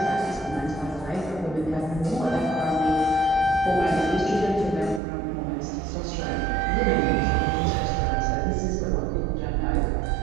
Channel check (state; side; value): drops out; left; at 5.0 s